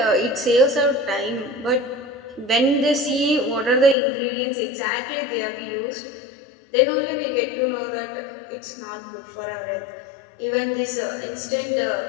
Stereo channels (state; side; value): drops out; right; at 4.0 s